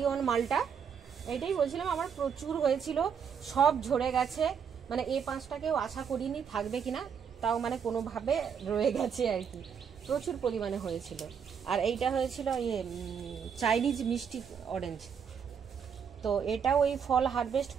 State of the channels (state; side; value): quieter; left; 7.1 dB